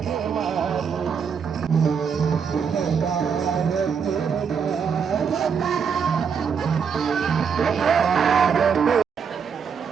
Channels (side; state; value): left; quieter; 6.6 dB